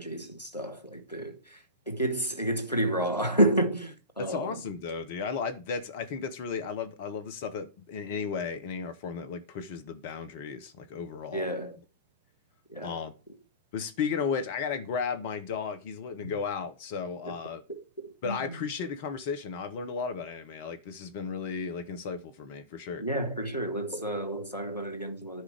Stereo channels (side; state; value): both; inverted; correlation -0.31